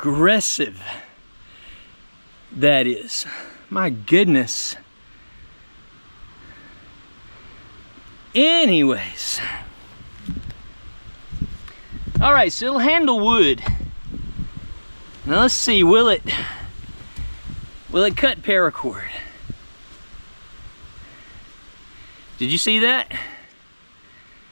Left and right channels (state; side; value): inverted; both; correlation -1.00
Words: that is. My goodness. Anyways, All right, so it'll handle wood. Now let's see, will it cut paracord? Did you see that?